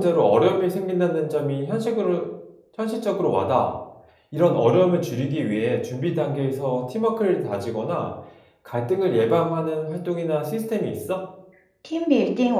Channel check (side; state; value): both; identical; correlation 1.00